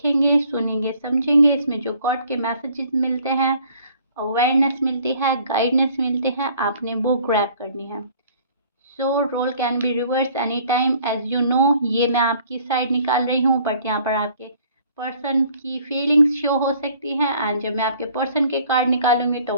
सुनेंगे, समझेंगे। इसमें जो गॉड के मैसेजेस मिलते हैं, अवेयरनेस मिलती है, गाइडनेस मिलते हैं, आपने वो ग्रैब करनी है। So role can be reverse any time as you know. ये मैं आपकी साइड निकाल रही हूँ, बट यहाँ पर आपके पर्सन की फीलिंग्स शो हो सकती हैं एंड जब मैं आपके पर्सन के कार्ड निकालूंगी तो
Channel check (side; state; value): both; inverted; correlation -0.57